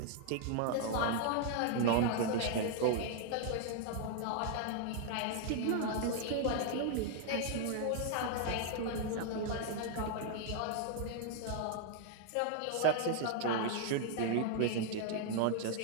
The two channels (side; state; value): both; different; correlation 0.00